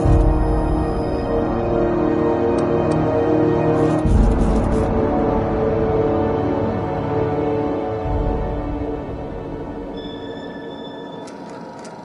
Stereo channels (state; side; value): identical; both; correlation 1.00